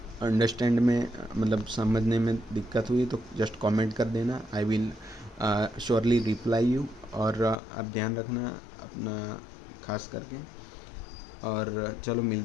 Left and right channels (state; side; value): drops out; right; at 7.6 s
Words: अंडरस्टैंड में मतलब समझने में दिक्कत हुई तो जस्ट कमेंट कर देना, I will surely reply you. और आप ध्यान रखना अपना खास करके। और चलो